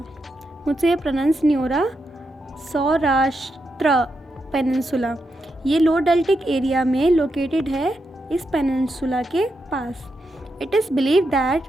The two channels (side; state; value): both; normal; correlation 0.84